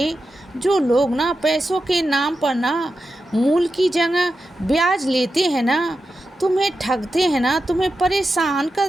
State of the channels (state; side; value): normal; both; correlation 0.90